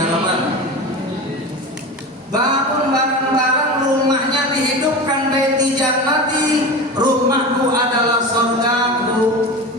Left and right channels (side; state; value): both; normal; correlation 0.28